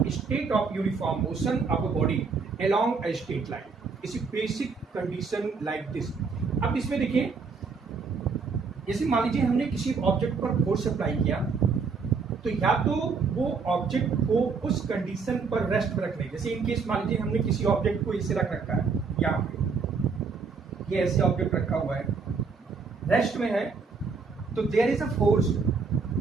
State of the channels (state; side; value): quieter; left; 5.0 dB